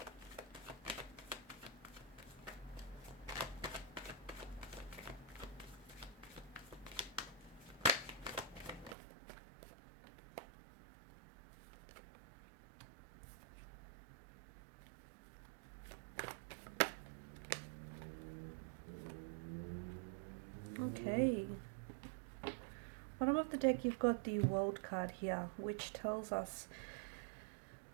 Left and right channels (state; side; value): drops out; left; at 9.0 s